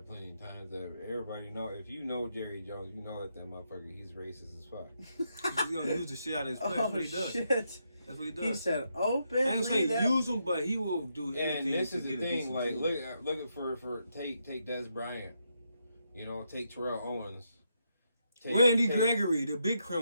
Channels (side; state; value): both; inverted; correlation -0.80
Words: plenty of times. That everybody know, if you know Jerry Jones, you know that motherfucker, he's racist as fuck. He's gonna use the shit out of his play. That's what he does. Shit. That's what he does. He said, "Open." I ain't saying use him, but he will do anything. And this is to the get thing. Like, look for take Des Bryant. Take Terrell Owens. Randy Gregory, the big